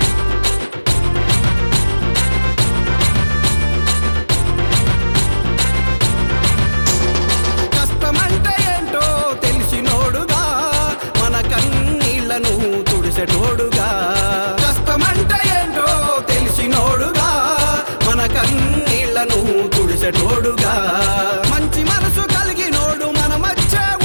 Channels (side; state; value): both; inverted; correlation -1.00